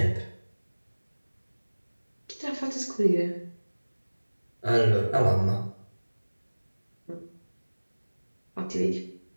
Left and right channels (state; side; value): inverted; both; correlation -1.00